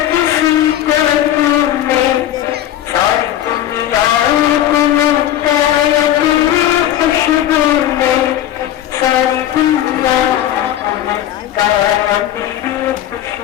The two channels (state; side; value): quieter; right; 12.1 dB